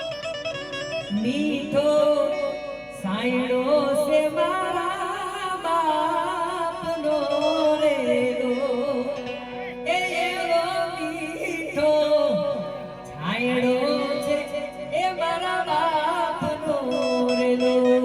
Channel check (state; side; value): identical; both; correlation 1.00